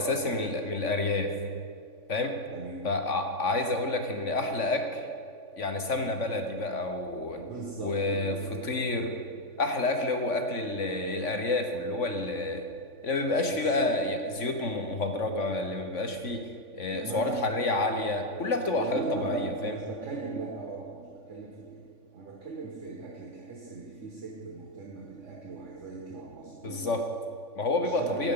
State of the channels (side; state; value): right; late; 3.5 ms